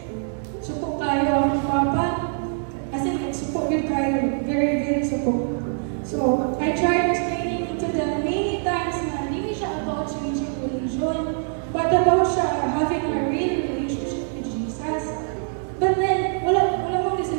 Supo kayo ang papa, as in supo good kayo, very, very supo. So I tried explaining to them many times na hindi siya about changing religion, but about siya having a real relationship with Jesus. But then, wala mo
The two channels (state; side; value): silent; left; 63 dB below the other